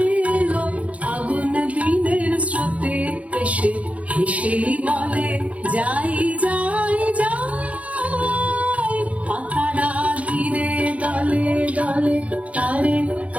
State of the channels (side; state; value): left; late; 0.066 ms